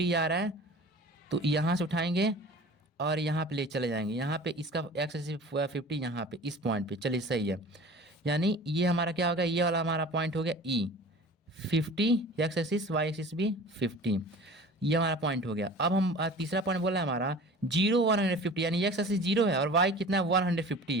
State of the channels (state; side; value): normal; both; correlation 0.41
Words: आ रहा है, तो यहाँ से उठाएंगे और यहाँ पे ले चले जाएंगे, यहाँ पे इसका एक्स एक्सिस 50 यहाँ पे इस पॉइंट पे, चलिए सही है, यानी ये हमारा क्या होगा, ये वाला हमारा पॉइंट हो गया ई 50, एक्स एक्सिस वाई एक्सिस भी 50, ये हमारा पॉइंट हो गया। अब हम तीसरा पॉइंट बोला है हमारा 0 150, यानी एक्स एक्सिस 0 है और वाई कितना है